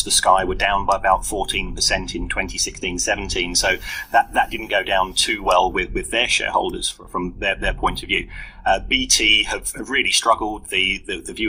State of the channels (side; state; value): both; identical; correlation 1.00